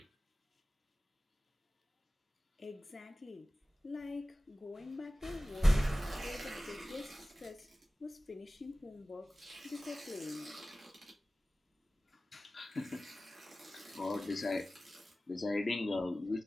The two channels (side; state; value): both; normal; correlation 0.96